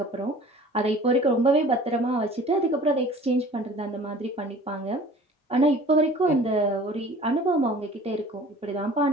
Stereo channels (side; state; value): both; normal; correlation 0.46